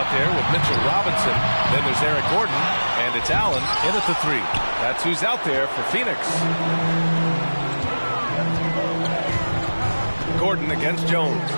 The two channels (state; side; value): inverted; both; correlation -1.00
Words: there with Mitchell Robinson. Then there's Eric Gordon, and it's Allen in at the 3. That's who's out there for Phoenix. Gordon against Jones.